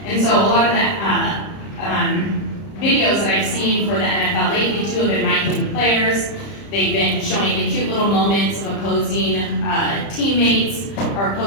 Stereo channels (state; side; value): late; right; 30 ms